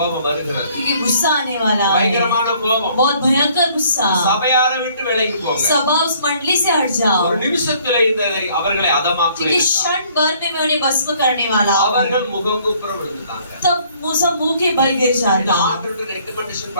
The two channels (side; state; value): both; inverted; correlation -0.60